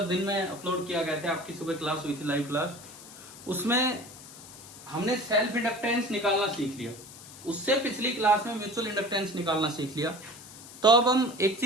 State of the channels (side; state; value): left; noise; hiss, 17 dB below the sound